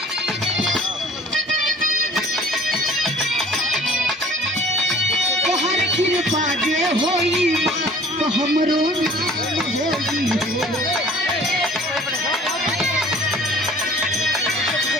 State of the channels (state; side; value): normal; both; correlation 0.49